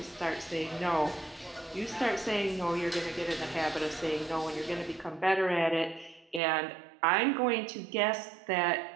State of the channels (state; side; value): drops out; left; at 6.4 s